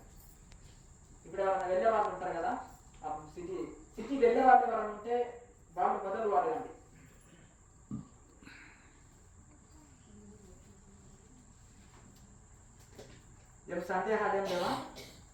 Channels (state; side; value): identical; both; correlation 1.00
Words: ఇప్పుడు ఎవరైనా వెళ్ళే వాళ్ళు ఉంటారు కదా, సిటీ వెళ్ళే వాళ్ళు ఎవరైనా ఉంటే వాళ్ళు మొదలు అడగండి. ఏం సందేహాలు ఏం లేవా?